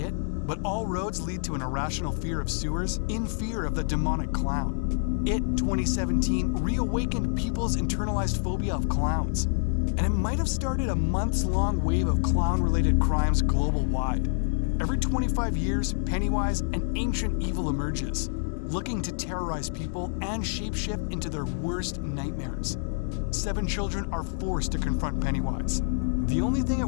but all roads lead to an irrational fear of sewers in fear of the demonic clown. It 2017 reawakened people's internalized phobia of clowns, and it might have started a months-long wave of clown-related crimes global-wide. Every 25 years, Pennywise, an ancient evil, emerges, looking to terrorize people and shapeshift into their worst nightmares. 7 children are forced to confront Pennywise. The only thing it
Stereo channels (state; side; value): silent; right; digital silence